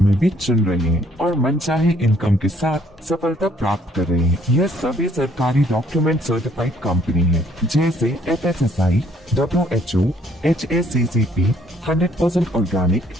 में भी चुन रहे हैं और मनचाहे इनकम के साथ सफलता प्राप्त कर रहे हैं। यह सभी सरकारी डॉक्यूमेंट सर्टिफाइड कंपनी है जैसे FSSAI, WHO, HACCP, 100% organic,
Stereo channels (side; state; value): both; normal; correlation 0.63